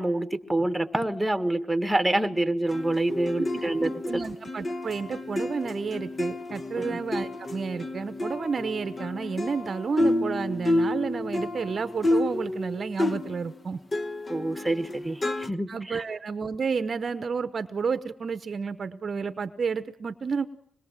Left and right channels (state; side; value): normal; both; correlation 0.92